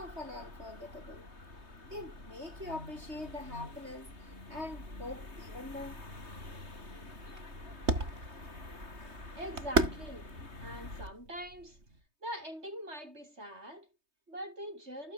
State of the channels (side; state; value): left; late; 3.2 ms